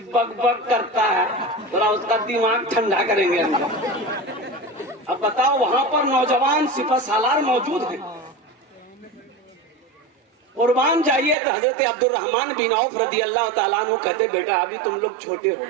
बक करता है, थोड़ा उसका दिमाग ठंडा करेंगे। अब बताओ वहां पर नौजवान सिपह सालार मौजूद हैं। कुर्बान जाइए तो हजरत अब्दुल रहमान बिन औफ रदी अल्लाह ताला अन्हु कहते बेटा अभी तुम लोग छोटे हो,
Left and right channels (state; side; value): drops out; left; at 11.4 s